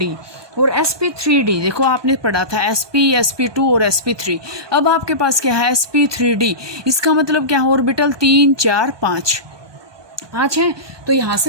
और sp3d देखो आपने पढ़ा था sp, sp2 और sp3। अब आपके पास क्या है sp3d, इसका मतलब क्या है ऑर्बिटल 3 4 5 है। तो यहाँ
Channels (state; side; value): late; left; 1.2 ms